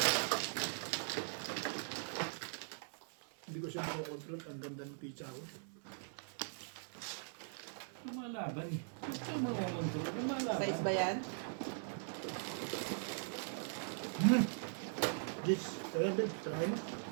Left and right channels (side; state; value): left; silent; 51 dB below the other